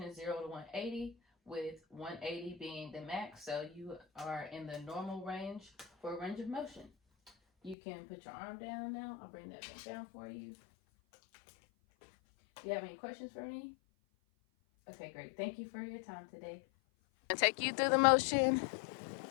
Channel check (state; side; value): drops out; right; at 7.8 s